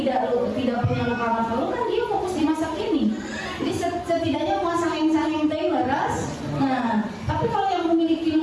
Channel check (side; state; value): both; identical; correlation 1.00